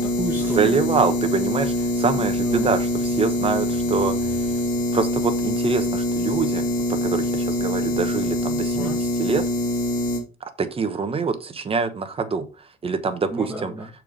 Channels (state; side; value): normal; both; correlation 0.38